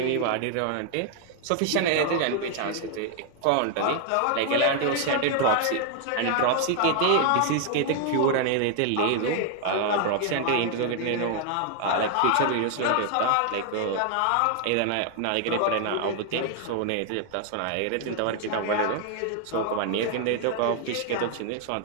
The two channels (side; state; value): both; different; correlation 0.00